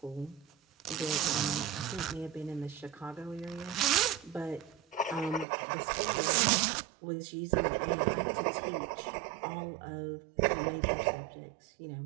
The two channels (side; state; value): left; drops out; at 5.5 s